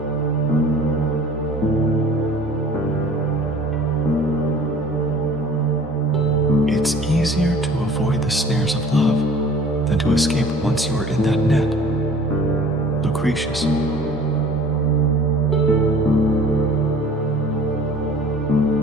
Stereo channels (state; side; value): normal; both; correlation 0.48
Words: It's easier to avoid the snares of love than to escape once you are in that net. Lucretius.